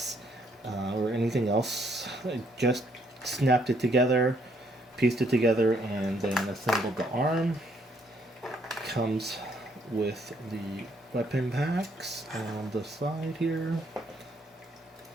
or anything else. I just snapped it together, pieced it together, and then assembled the arm. Comes with the weapon packs on the side here.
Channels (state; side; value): normal; both; correlation 0.69